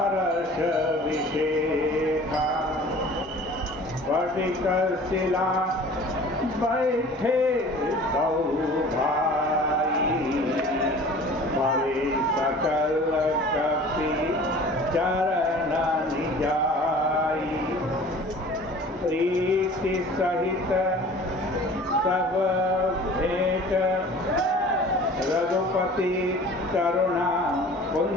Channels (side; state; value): both; normal; correlation 0.45